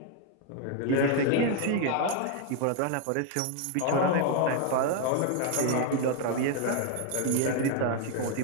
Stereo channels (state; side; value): different; both; correlation 0.01